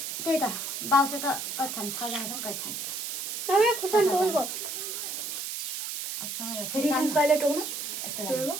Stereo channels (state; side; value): noise; right; hiss, 4 dB below the sound